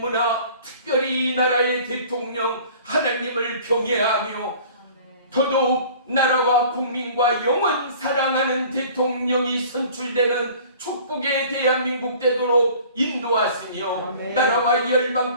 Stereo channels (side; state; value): both; inverted; correlation -0.48